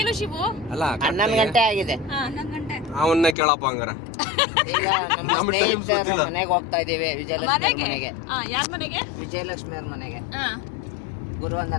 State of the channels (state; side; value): drops out; right; at 3.4 s